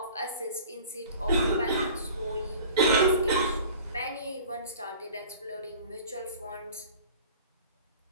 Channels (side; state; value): both; inverted; correlation -0.43